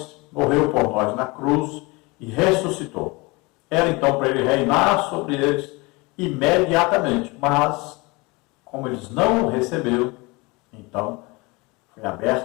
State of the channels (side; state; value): right; quieter; 25.3 dB